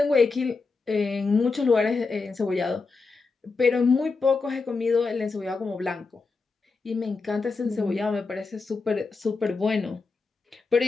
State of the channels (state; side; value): quieter; right; 4.2 dB